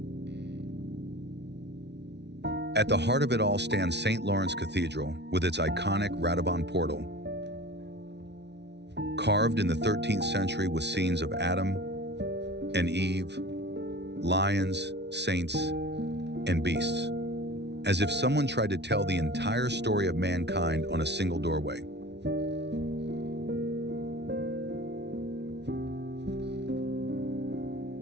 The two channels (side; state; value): left; late; 0.50 ms